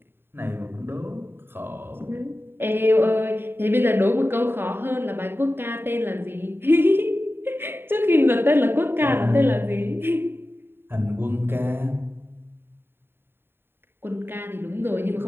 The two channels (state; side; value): late; left; 0.11 ms